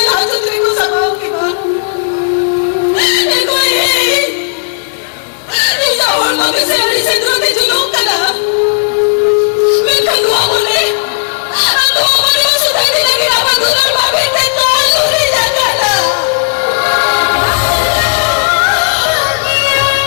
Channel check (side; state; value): right; silent; digital silence